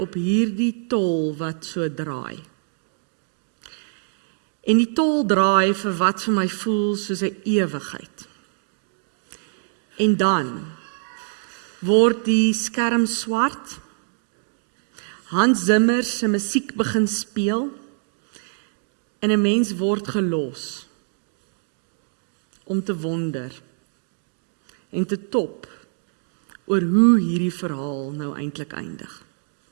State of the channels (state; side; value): silent; left; digital silence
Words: hierdie tol wat so draai. en die tol draai vir wat vir my voel soos 'n ewigheid. En dan word die skerm swart, Hans Zimmer se musiek begin speel, en 'n mens word gelos om te wonder en te top oor hoe hierdie verhaal nou eintlik eindig.